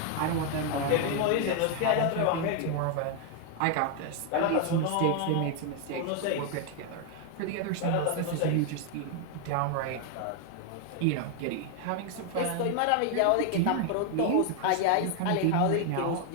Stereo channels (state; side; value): different; both; correlation 0.01